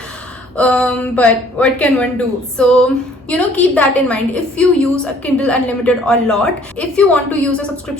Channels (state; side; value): normal; both; correlation 0.57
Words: But what can one do? So, you know, keep that in mind. If you use a Kindle Unlimited a lot, if you want to use a